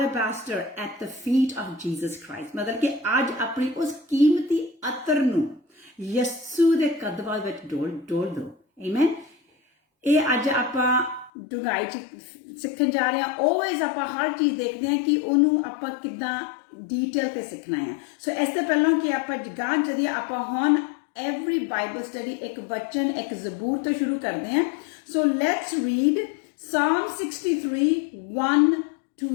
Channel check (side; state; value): right; drops out; at 11.3 s